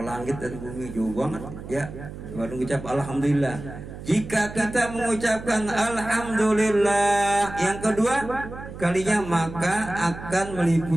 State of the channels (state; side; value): noise; right; hum, 12 dB below the sound